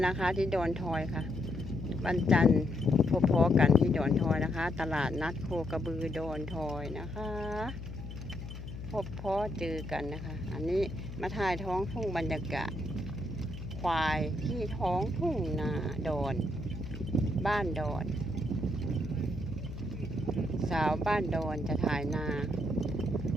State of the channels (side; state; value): left; noise; hum, 9 dB below the sound